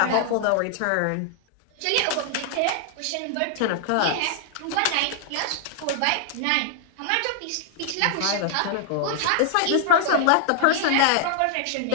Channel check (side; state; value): both; different; correlation 0.00